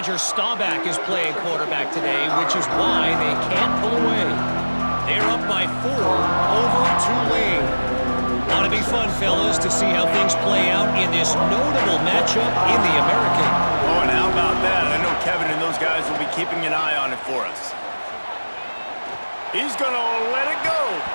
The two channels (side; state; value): both; inverted; correlation -1.00